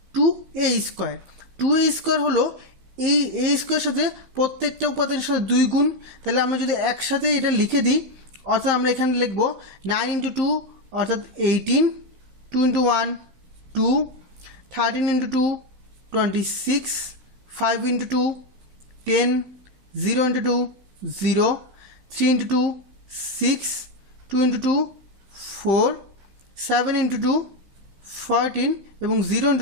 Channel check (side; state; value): left; late; 15 ms